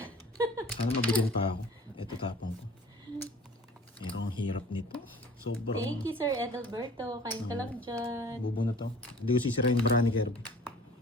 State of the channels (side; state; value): both; normal; correlation 0.47